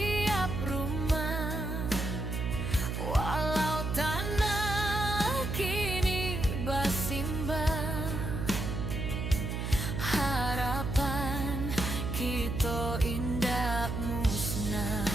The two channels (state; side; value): noise; right; hum, 2 dB below the sound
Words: rumah. Walau tanah kini bersimbah, harapan kita indah musnah.